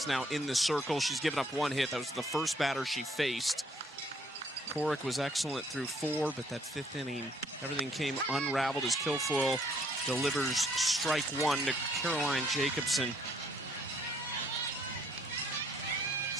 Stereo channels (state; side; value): normal; both; correlation 0.65